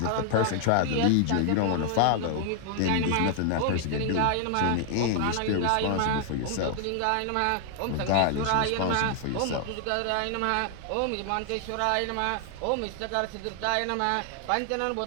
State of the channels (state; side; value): different; both; correlation 0.00